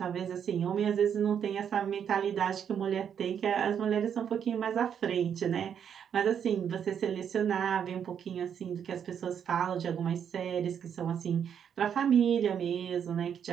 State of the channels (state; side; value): quieter; left; 8.2 dB